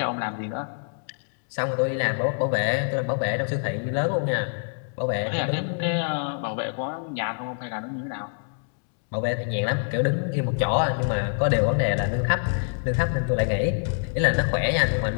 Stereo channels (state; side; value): silent; right; digital silence